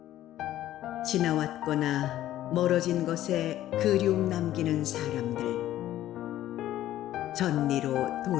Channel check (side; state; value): right; quieter; 13.4 dB